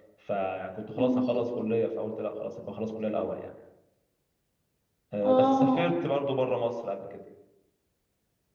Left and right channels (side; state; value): both; identical; correlation 1.00